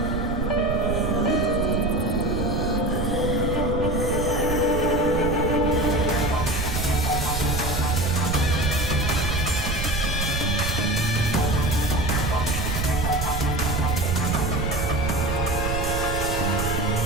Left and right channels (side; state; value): right; noise; rumble, 3 dB below the sound